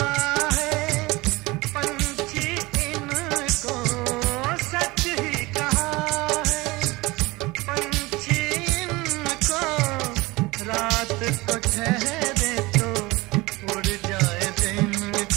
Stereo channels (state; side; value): quieter; left; 22.1 dB